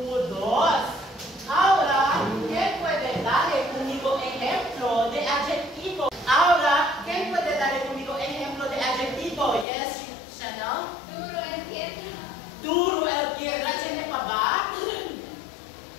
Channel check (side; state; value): right; drops out; at 9.7 s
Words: 2. Ahora, ¿quién puede darle conmigo ejemplo de adjetivo? Ahora, ¿quién puede darle conmigo ejemplo de adjetivo? Yes, Chanel. Duro el piedra, ¿tiene pa ba?